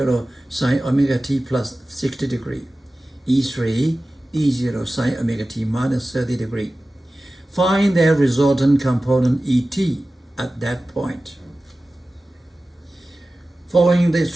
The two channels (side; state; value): both; normal; correlation 0.96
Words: sine omega t plus 60 degrees, E3, E0 sine omega t minus 30 degrees. Find their resultant component ET at that point. Following the